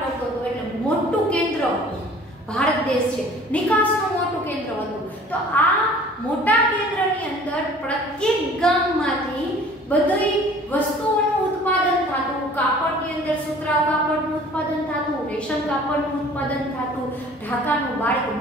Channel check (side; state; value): both; normal; correlation 0.50